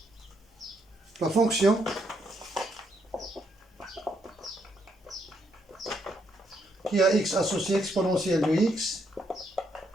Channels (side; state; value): both; normal; correlation 0.75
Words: La fonction qui a x associé exponentielle de x